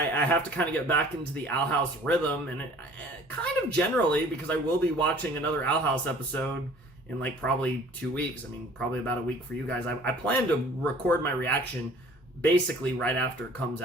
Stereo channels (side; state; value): both; normal; correlation 0.51